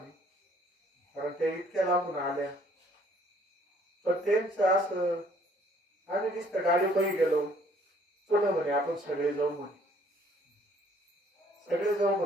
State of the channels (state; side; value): normal; both; correlation 0.60